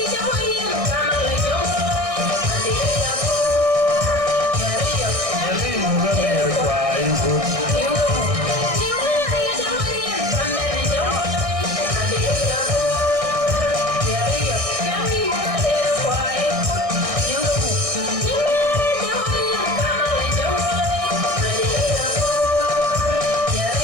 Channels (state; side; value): late; left; 1.6 ms